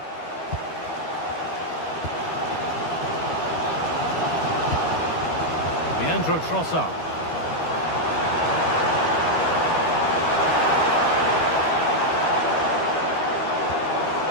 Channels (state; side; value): late; right; 12 ms